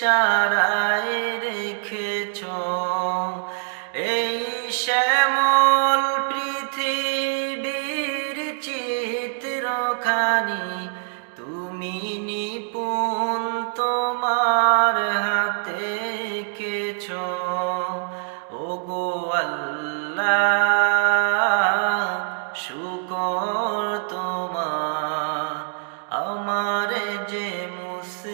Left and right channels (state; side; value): silent; left; digital silence